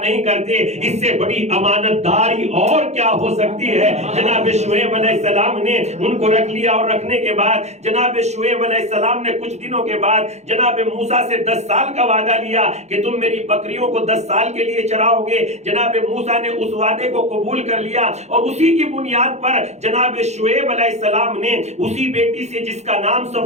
کرتے، اس سے بڑی امانت داری اور کیا ہو سکتی ہے؟ جناب شعیب علیہ السلام نے ان کو رکھ لیا، اور رکھنے کے بعد جناب شعیب علیہ السلام نے کچھ دنوں کے بعد جناب موسیٰ سے 10 سال کا وعدہ لیا کہ تم میری بکریوں کو 10 سال کے لیے چراؤ گے۔ جناب موسیٰ نے اس وعدے کو قبول کر لیا، اور اسی کی بنیاد پر جناب شعیب علیہ السلام نے اسی بیٹی سے جس کا نام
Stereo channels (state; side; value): late; left; 0.32 ms